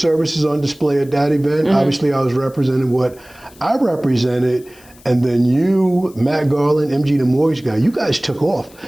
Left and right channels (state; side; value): noise; left; hiss, 26 dB below the sound